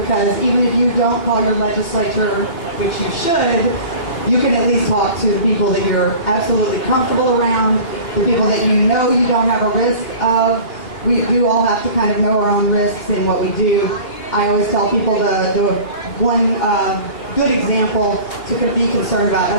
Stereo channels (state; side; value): late; right; 2.8 ms